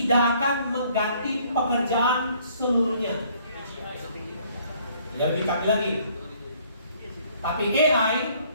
akan mengganti pekerjaan seluruhnya. Lebih kami lagi. Tapi AI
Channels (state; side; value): inverted; both; correlation -0.61